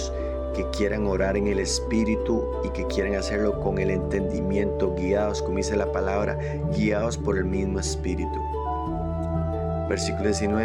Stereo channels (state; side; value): identical; both; correlation 1.00